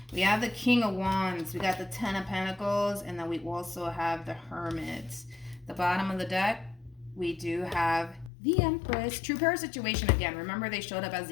We have the King of Wands. We got the Ten of Pentacles. And then we also have the Hermit. The bottom of the deck, we do have the Empress. True pair situation again. Remember, they showed up as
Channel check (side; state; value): right; drops out; at 8.3 s